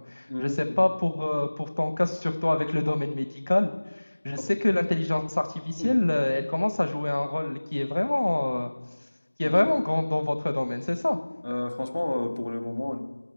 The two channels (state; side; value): inverted; both; correlation -1.00